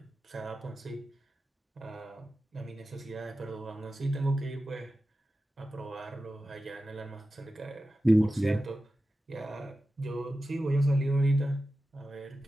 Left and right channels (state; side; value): normal; both; correlation 0.93